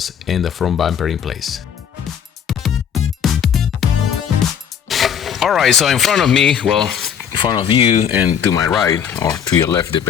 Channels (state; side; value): quieter; right; 8.1 dB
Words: and the front bumper in place. Alright, so in front of me, well, in front of you and to my right, or to your left,